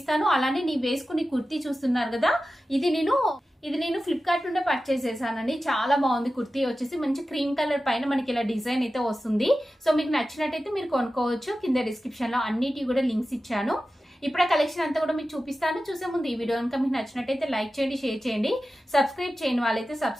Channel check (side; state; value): both; normal; correlation 0.94